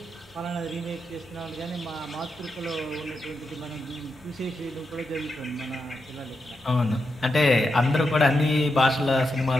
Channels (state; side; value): normal; both; correlation 0.86